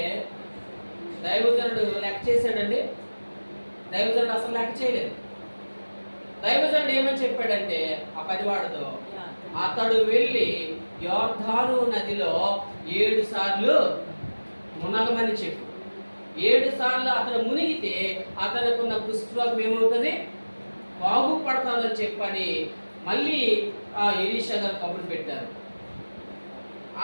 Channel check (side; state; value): both; inverted; correlation -1.00